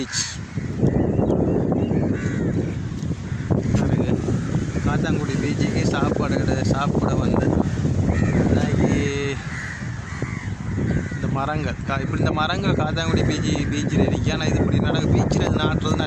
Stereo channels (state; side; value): identical; both; correlation 1.00